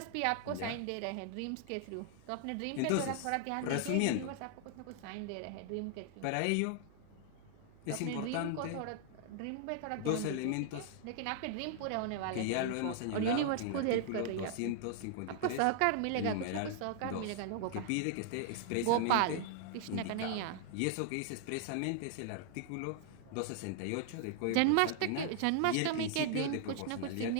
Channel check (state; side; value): different; both; correlation 0.00